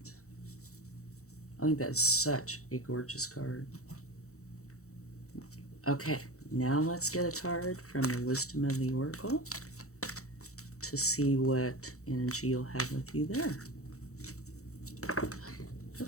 I think that's such a gorgeous card. Okay, now let's get a card from the wisdom of the oracle to see what energy you'll have with you there.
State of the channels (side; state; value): right; late; 0.64 ms